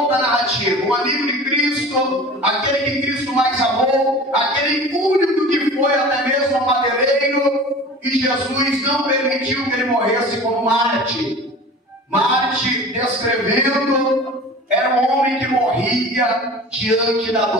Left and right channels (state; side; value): normal; both; correlation 0.39